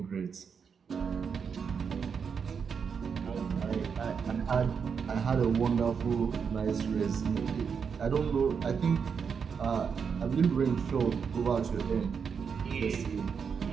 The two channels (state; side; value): quieter; left; 6.4 dB